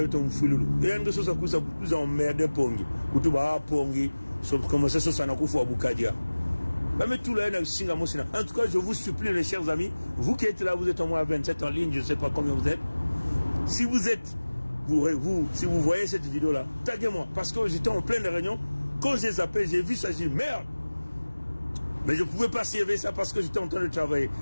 mfululu. Yenge sosa kuza emmerde pongi. Kutuba pongi. So commencer sosa na kufu Boukadia. Même tout là singa mosina. En tout cas, je vous supplie les chers amis, vous qui êtes là, vous êtes au moins 27 en ligne, je ne sais pas combien vous êtes. Si vous êtes si vous voyez cette vidéo là, taguez-moi parce que j'étais en pleine réunion. Quand j'ai zappé, j'ai vu ça, j'ai dit merde. Mais je ne pouvais pas servir ça parce que j'étais en train de travailler.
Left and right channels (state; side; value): inverted; both; correlation -1.00